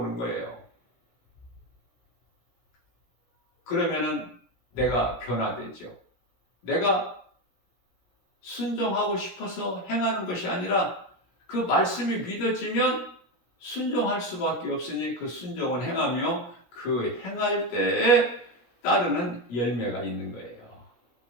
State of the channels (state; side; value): late; right; 17 ms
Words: 거예요. 그러면은 내가 변화되죠. 내가 순종하고 싶어서 행하는 것이 아니라 그 말씀이 믿어지면 순종할 수밖에 없으니 그 순종은 행하며 그 행할 때에 따르는 열매가 있는 거예요.